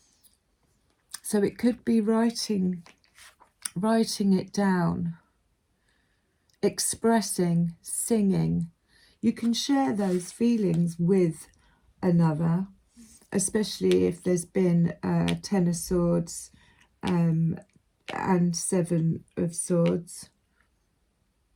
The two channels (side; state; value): both; identical; correlation 1.00